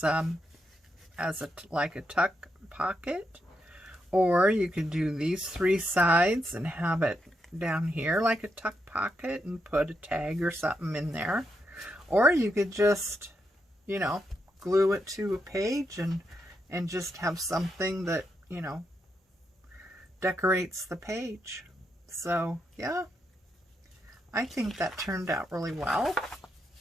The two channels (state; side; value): normal; both; correlation 0.82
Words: like a tuck pocket, or you could do these 3 sides and have it down here like a tuck pocket and put a tag or something in there, or you could just, you know, glue it to a page and just have something that, you know, decorates the page. So yeah, I think that turned out really well.